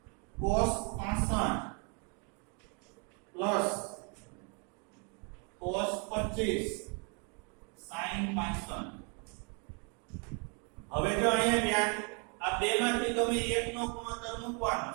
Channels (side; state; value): left; quieter; 36.2 dB